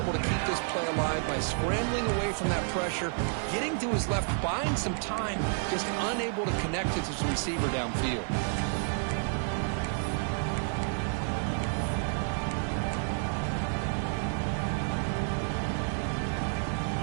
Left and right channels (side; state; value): left; silent; 57 dB below the other